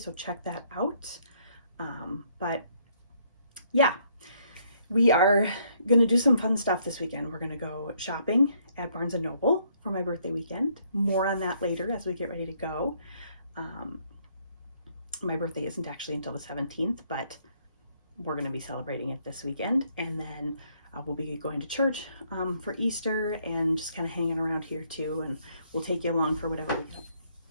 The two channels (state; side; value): inverted; both; correlation -0.68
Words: check that out. But yeah, we are going to do some fun stuff this weekend. We're going to go shopping at Barnes & Noble for my birthday weekend. More on that later as we get ready to go. My birthday isn't actually until the 17th, but we're going to be celebrating it this weekend. And then we'll be going to church for Easter and just kind of hanging around here too. And we'll take you along for whatever we got.